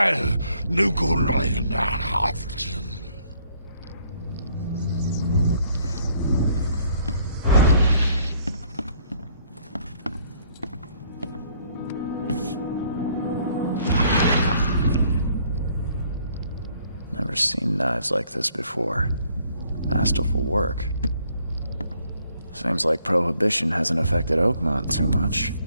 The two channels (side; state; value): both; inverted; correlation -0.65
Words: Nugunlein, Haften. Never seen knives like this before. Masterful work. Seems like Prohibition hasn't affected Oakmont too much.